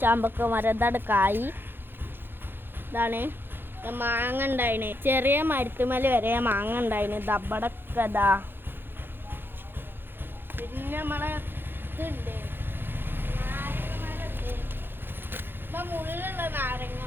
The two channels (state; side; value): late; left; 0.10 ms